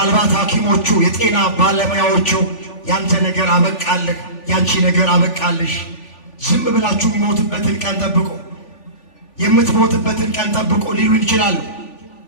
ሐኪሞቹ የጤና ባለሙያዎቹ ያንተ ነገር አበቃልህ፣ ያንቺ ነገር አበቃልሽ፣ ዝም ብላችሁ የሚሞትበትን ቀን ጠብቁ፣ የምትሞትበትን ቀን ጠብቁ ሊሉ ይችላሉ።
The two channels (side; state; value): right; late; 3.4 ms